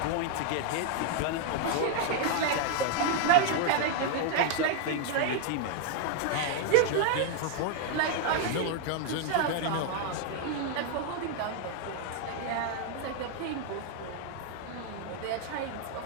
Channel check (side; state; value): both; different; correlation 0.00